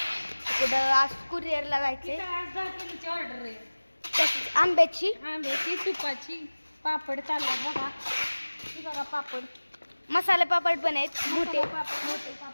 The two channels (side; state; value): both; inverted; correlation -1.00